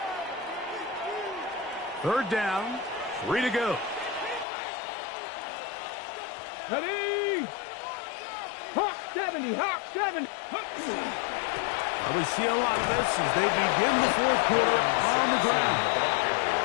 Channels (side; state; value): right; drops out; at 4.5 s